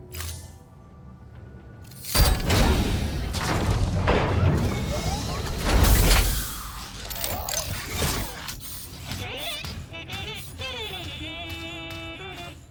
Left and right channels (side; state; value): both; identical; correlation 1.00